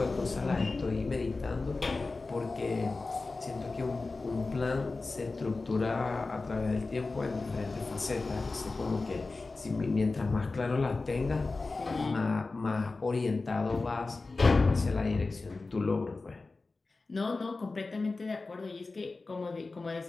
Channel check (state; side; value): quieter; right; 3.6 dB